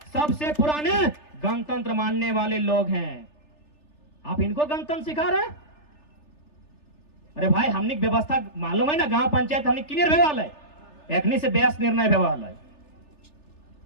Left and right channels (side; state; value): right; late; 3.3 ms